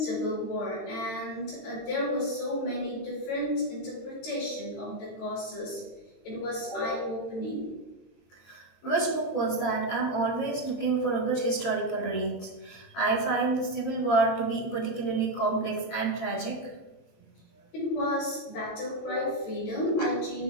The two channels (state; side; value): late; right; 22 ms